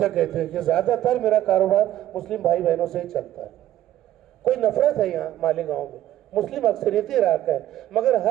कहते हैं कि ज्यादातर मेरा कारोबार मुस्लिम भाई बहनों से ही चलता है। कोई नफरत है यहाँ मालेगांव में, मुस्लिम अक्सरियती इलाका है, मगर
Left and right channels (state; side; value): quieter; left; 13.0 dB